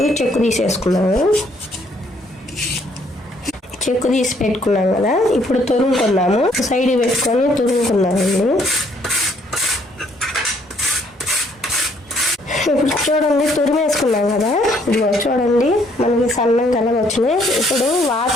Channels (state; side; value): normal; both; correlation 0.66